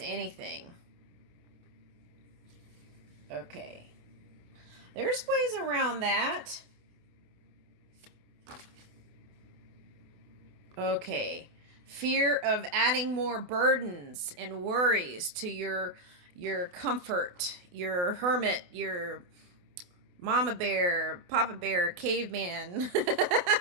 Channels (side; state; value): left; late; 28 ms